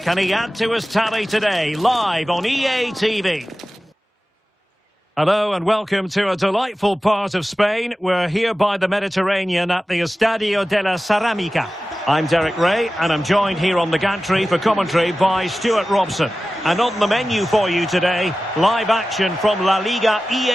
Can he add to his tally today? Live on EA TV. Hello and welcome to a delightful part of Spain. We're here by the Mediterranean at the Estadio de la Ceramica. I'm Derek Ray and I'm joined here on the gantry for commentary by Stuart Robson. And on the menu for you today, live action from La-Liga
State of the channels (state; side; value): normal; both; correlation 0.95